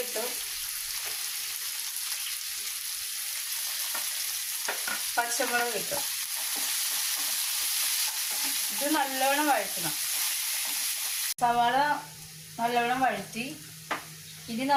ഇട്ടു. പച്ചമുളക് ഇട്ടു. ഇത് നല്ലവണ്ണം വഴറ്റണം. സവാള നല്ലവണ്ണം വഴറ്റി ഇനി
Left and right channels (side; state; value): both; identical; correlation 1.00